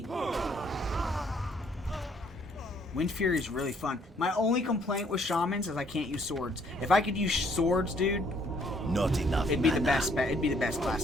Wind Fury is really fun. My only complaint with Shamans is I can't use swords. If I could use swords, dude, not enough. It'd be the best. It'd be the best class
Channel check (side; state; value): both; normal; correlation 0.65